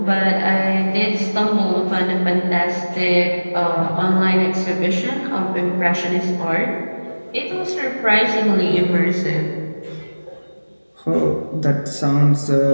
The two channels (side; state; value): both; inverted; correlation -1.00